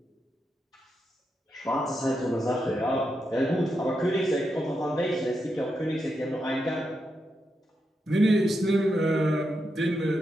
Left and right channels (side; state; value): both; normal; correlation 0.85